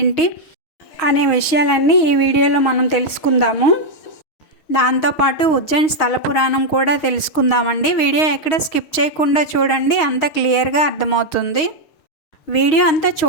అనే విషయాలన్నీ ఈ వీడియోలో మనం తెలుసుకుందాము. దాంతోపాటు ఉజ్జయిన్ స్థల పురాణం కూడా తెలుసుకుందామండి. వీడియో ఎక్కడ స్కిప్ చేయకుండా చూడండి, అంత క్లియర్గా అర్థమవుతుంది. వీడియో అంతా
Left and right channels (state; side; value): late; right; 6.3 ms